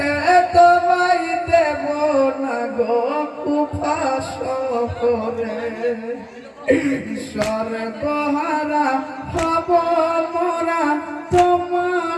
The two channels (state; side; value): identical; both; correlation 1.00